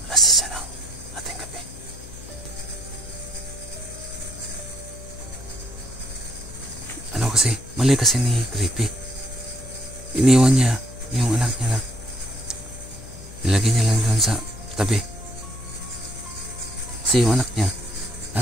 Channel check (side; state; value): left; noise; hum, 16 dB below the sound